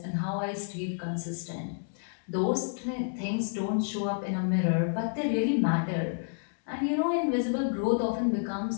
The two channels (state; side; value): silent; right; digital silence